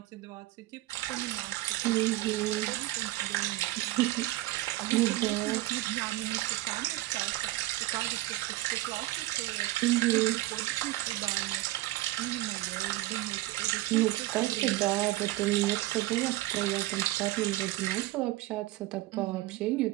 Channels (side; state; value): left; quieter; 17.3 dB